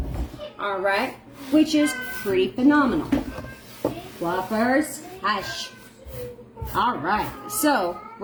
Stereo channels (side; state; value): both; identical; correlation 1.00